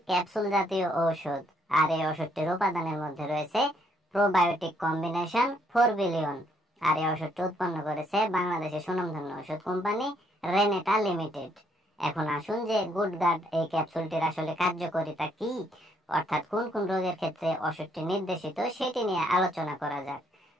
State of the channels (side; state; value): both; normal; correlation 0.69